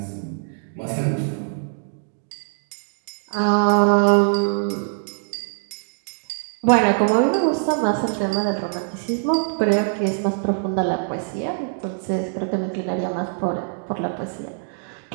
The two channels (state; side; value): silent; left; digital silence